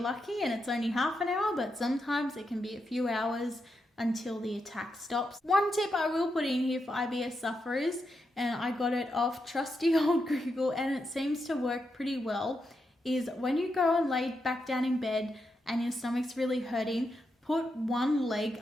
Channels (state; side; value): normal; both; correlation 0.84